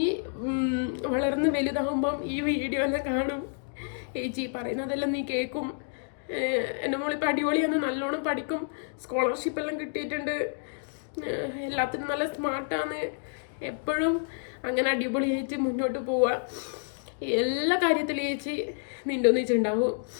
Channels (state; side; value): silent; right; digital silence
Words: വളർന്ന് വലുതാകുമ്പം ഈ വീഡിയോ എല്ലാം കാണും, ചേച്ചി പറയുന്നതെല്ലാം നീ കേൾക്കും. എൻ്റെ മോളിപ്പോൾ അടിപൊളിയാണ്, നല്ലോണം പഠിക്കും, സ്കോളർഷിപ്പെല്ലാം കിട്ടിയിട്ടുണ്ട്, എല്ലാത്തിനും നല്ല സ്മാർട്ടാണ്. എപ്പോഴും അങ്ങനെ അടിപൊളിയായിട്ട് മുന്നോട്ട് പോവുക. എല്ലാ കാര്യത്തിലും ചേച്ചി നിൻ്റെ ഒന്നിച്ചുണ്ടാവും.